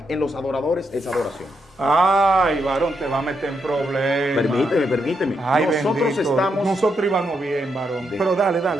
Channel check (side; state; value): both; normal; correlation 0.81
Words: en los adoradores es adoración. Ay, varón, te va a meter en problemas. Permíteme. Ay, Nosotros íbamos bien, varón. Pero dale.